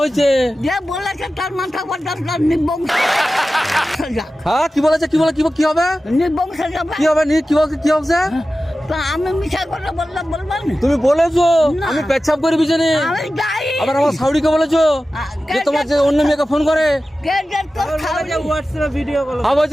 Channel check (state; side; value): normal; both; correlation 0.94